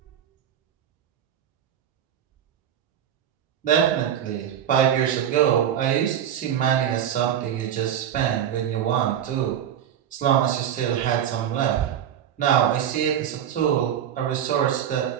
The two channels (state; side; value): quieter; left; 9.8 dB